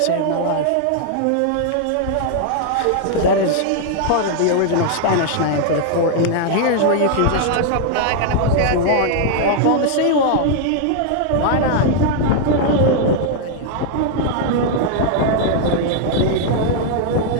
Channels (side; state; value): both; different; correlation 0.00